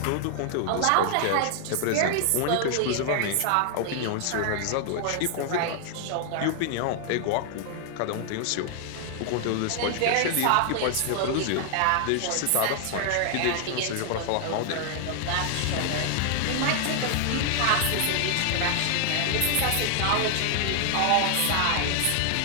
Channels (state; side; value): different; both; correlation 0.00